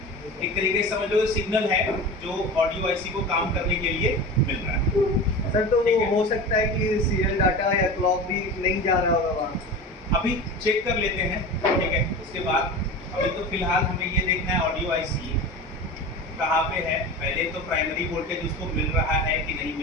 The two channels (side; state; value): both; normal; correlation 0.31